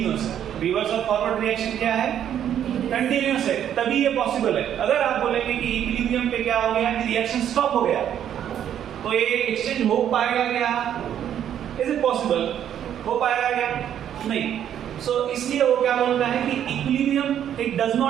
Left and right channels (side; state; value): left; quieter; 9.9 dB